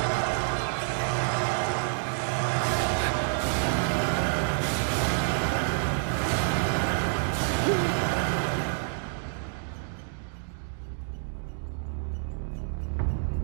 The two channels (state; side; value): silent; left; digital silence